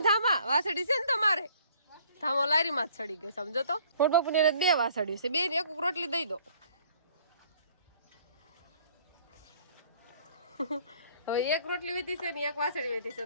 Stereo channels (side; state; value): both; inverted; correlation -0.57